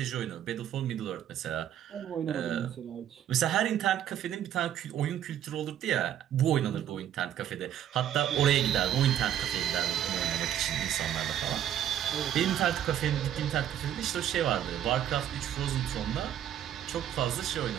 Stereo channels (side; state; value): left; quieter; 10.7 dB